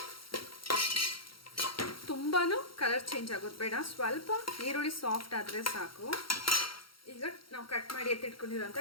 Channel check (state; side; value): late; right; 0.74 ms